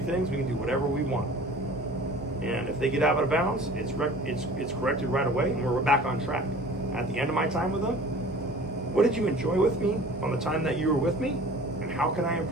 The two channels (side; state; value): both; normal; correlation 0.45